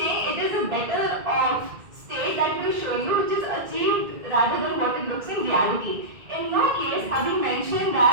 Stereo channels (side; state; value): left; late; 2.1 ms